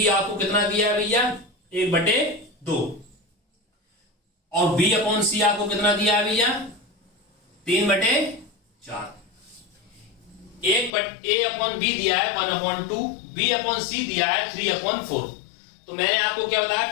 आपको कितना दिया है भैया 1/2 और B/C आपको कितना दिया है भैया 3/4। A/B दिया है 1/2, B/C दिया है 3/4। तो मैंने आपको क्या बताया,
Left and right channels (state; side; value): drops out; right; at 10.9 s